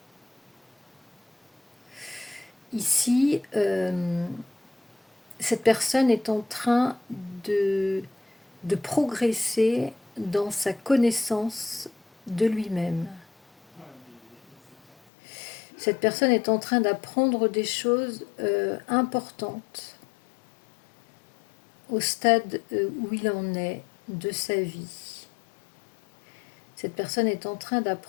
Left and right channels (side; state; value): right; drops out; at 15.0 s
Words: Ici, cette personne est en train de progresser dans sa connaissance de lui-même. Cette personne est en train d'apprendre des choses importantes au stade où il en est de sa vie. Cette personne est en train